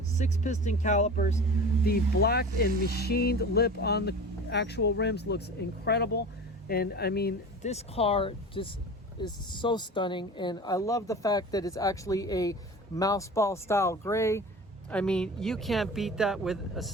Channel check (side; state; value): both; normal; correlation 0.35